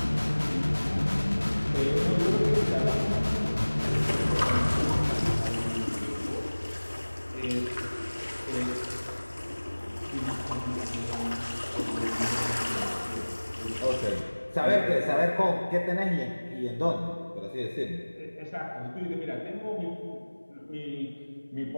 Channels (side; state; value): both; inverted; correlation -1.00